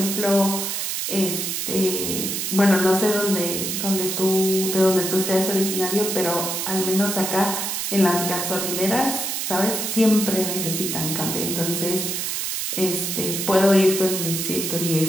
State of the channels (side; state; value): right; noise; hiss, 2 dB below the sound